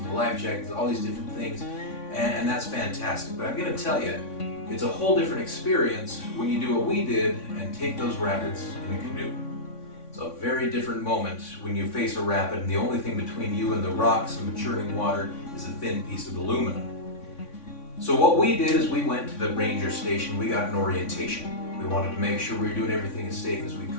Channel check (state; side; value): late; right; 3.5 ms